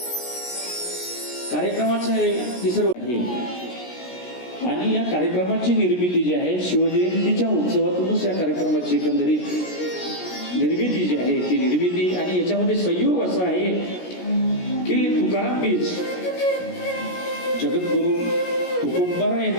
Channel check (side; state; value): right; late; 17 ms